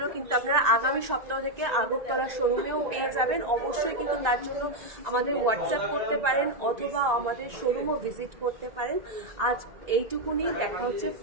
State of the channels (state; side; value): late; left; 1.9 ms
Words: কিন্তু আপনারা আগামী সপ্তাহ থেকে আগরতলার শোরুমেও পেয়ে যাবেন। অবশ্যই কিন্তু তার জন্য আমাদের হোয়াটসঅ্যাপ করতে পারেন অথবা আমাদের শোরুমও ভিজিট করতে পারেন। আজ এইটুকুনি, দেখা হচ্ছে